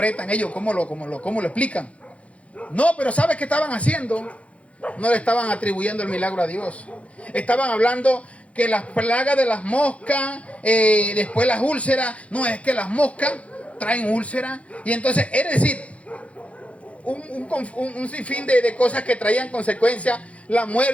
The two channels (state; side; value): late; right; 0.063 ms